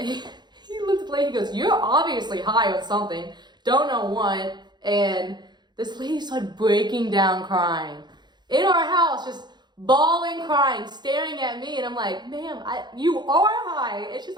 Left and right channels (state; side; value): late; left; 0.21 ms